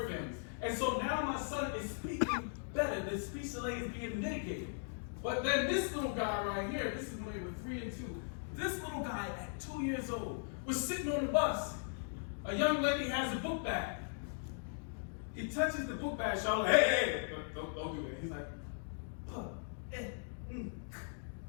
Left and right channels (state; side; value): silent; right; digital silence